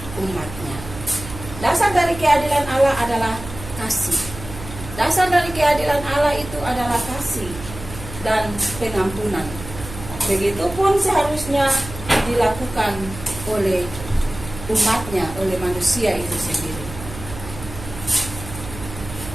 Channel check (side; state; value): right; noise; hum, 12 dB below the sound